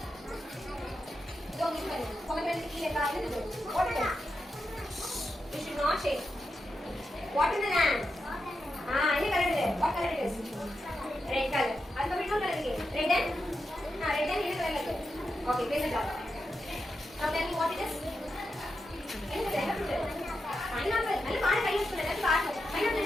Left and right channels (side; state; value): both; normal; correlation 0.87